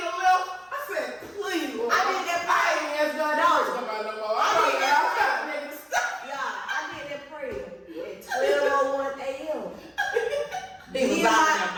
a little. I said, please, Lord. I did that prayer. I ain't asked God to come out no more. I did that don't know. Yeah, I did that prayer at 12:01 a.m. He was Me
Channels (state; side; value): identical; both; correlation 1.00